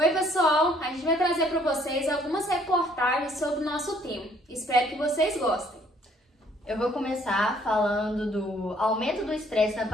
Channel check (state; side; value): normal; both; correlation 0.62